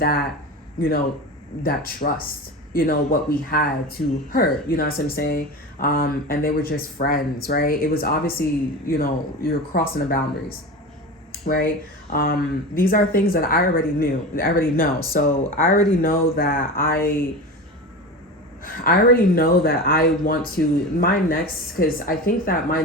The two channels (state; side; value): normal; both; correlation 0.28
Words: that trust, what we had to her, you know what I'm saying? And they were just friends, right? It was obviously, you're crossing the boundaries, right? These are things that I already know. So I already know that I want to, because I think that my